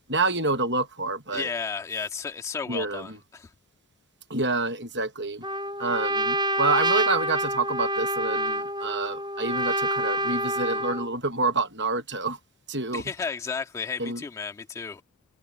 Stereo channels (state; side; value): normal; both; correlation -0.15